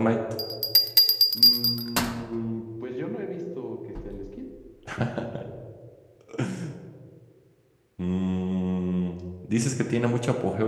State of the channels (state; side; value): identical; both; correlation 1.00